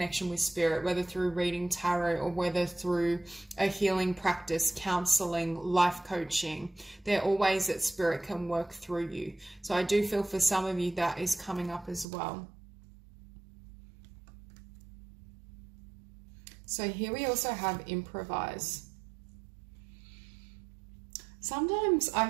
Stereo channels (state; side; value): drops out; left; at 12.1 s